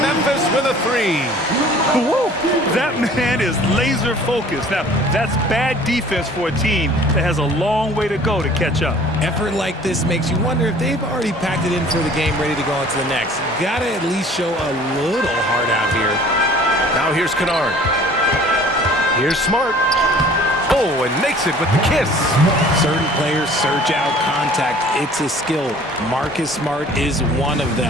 with a 3. Woo! That man is laser focused. Now, that's bad defense for a team that has a long way to go to catch up. Effort like this makes you wonder if they've already packed it in for the game, ready to go into the next. Gotta at least show a little heart out here. Now here's Kennard. Here's Smart. Oh, and makes it with the kiss. Certain players search out contact. It's a skill. Marcus Smart is one of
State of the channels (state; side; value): normal; both; correlation 0.50